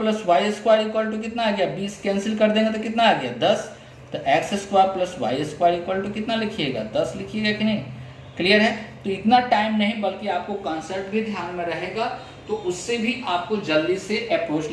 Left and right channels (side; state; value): both; identical; correlation 1.00